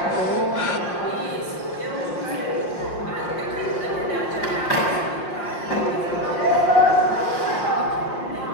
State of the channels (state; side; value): late; right; 5.6 ms